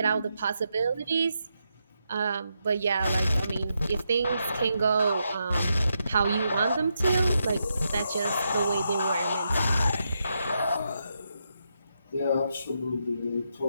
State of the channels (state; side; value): inverted; both; correlation -0.83